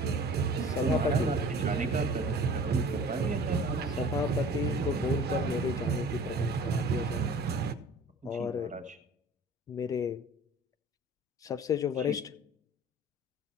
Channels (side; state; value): both; normal; correlation 0.45